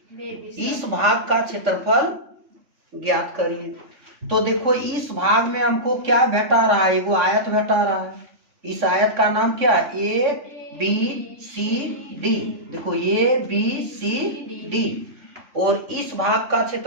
इस भाग का क्षेत्रफल ज्ञात करिए। तो देखो इस भाग में हमको क्या भेटा रहा है, वो आयत भेटा रहा है। इस आयत का नाम क्या है, ABCD। देखो ABCD। और इस भाग का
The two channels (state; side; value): late; left; 3.6 ms